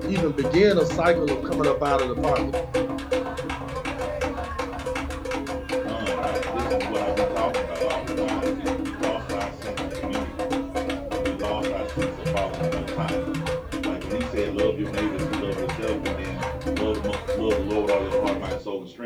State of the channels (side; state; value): both; identical; correlation 1.00